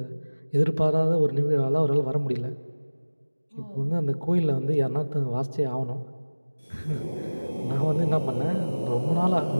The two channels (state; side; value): inverted; both; correlation -1.00